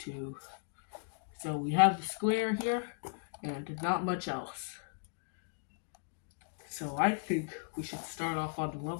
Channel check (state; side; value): silent; right; 54 dB below the other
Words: So we have the square here, and not much else. So I think we should start off on the